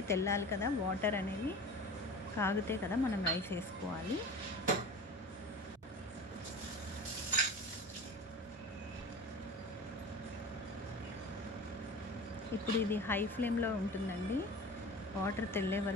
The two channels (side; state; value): both; normal; correlation 0.35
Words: తెల్లాలి కదా, వాటర్ అనేవి కాగితే కదా మనం రైస్ వేసుకోవాలి. ఇప్పుడు ఇది హై ఫ్లేమ్లో ఉంటుందండి. వాటర్ తెల్లే